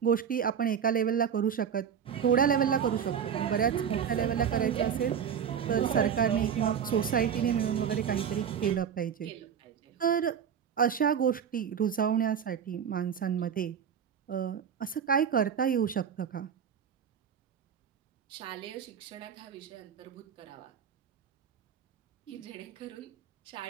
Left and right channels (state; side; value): quieter; left; 7.9 dB